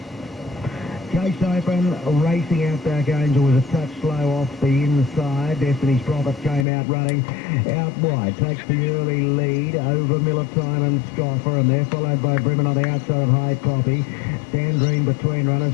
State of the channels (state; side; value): drops out; right; at 6.7 s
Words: Chase Open, racing Outback Angel was a touch slow off the inside. Destiny's Prophet came out running out wide. Takes the early lead over Miller Time and Scoffer, and they're followed by Bremen on the outside of High Poppy. Sandrine between runners